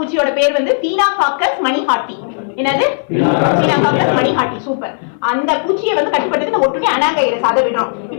பேர் வந்து பீனாகாக்கஸ் மணிஹாட்டி. என்னது? பீனாகாக்கஸ் மணிஹாட்டி. சூப்பர். அந்த பூச்சியை வந்து கட்டுப்படுத்துறது இந்த ஒட்டுண்ணி அனாகைரஸ். அதை விடுறோம்.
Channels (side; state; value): right; silent; 57 dB below the other